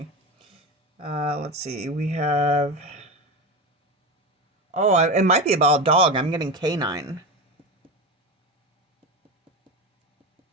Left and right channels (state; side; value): normal; both; correlation 0.21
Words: Let's see. We have. Oh, it might be about a dog. I'm getting canine.